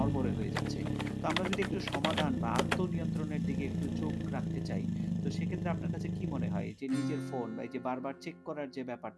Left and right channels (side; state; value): both; identical; correlation 1.00